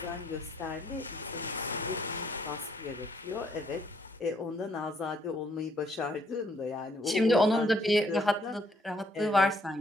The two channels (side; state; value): both; normal; correlation 0.69